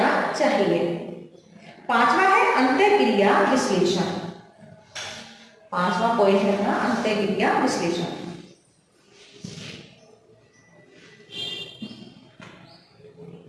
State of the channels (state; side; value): identical; both; correlation 1.00